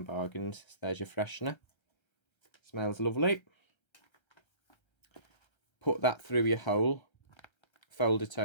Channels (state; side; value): late; right; 1.3 ms